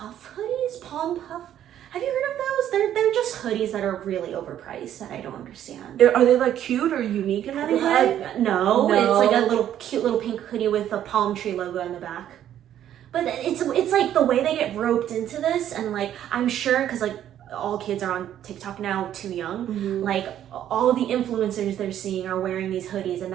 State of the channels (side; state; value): left; quieter; 11.0 dB